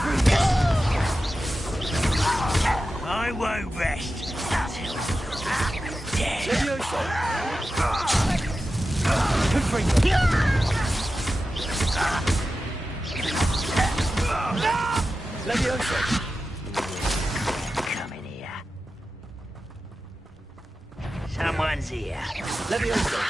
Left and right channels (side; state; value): both; normal; correlation 0.92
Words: I won't rest until you're dead. Come in here. Someone's here.